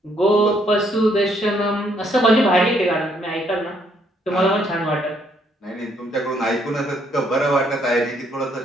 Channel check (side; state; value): both; normal; correlation 0.70